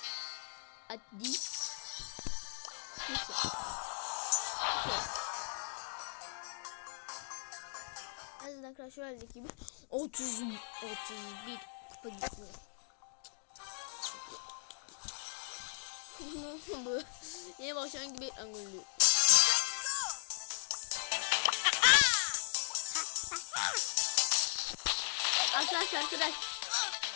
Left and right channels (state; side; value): silent; right; digital silence